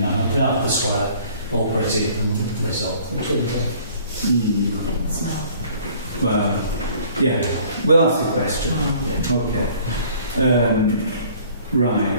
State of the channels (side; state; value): both; inverted; correlation -0.54